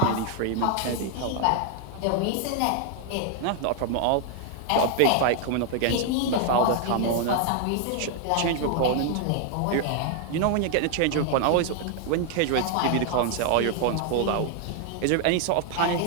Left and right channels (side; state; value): both; different; correlation 0.00